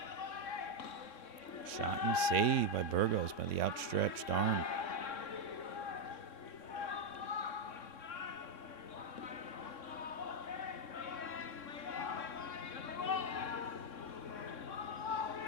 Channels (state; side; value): late; right; 3.6 ms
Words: Shot and save by Burgos by the outstretched arm.